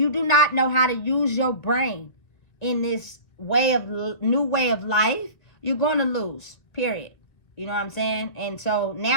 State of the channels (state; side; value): late; right; 1.9 ms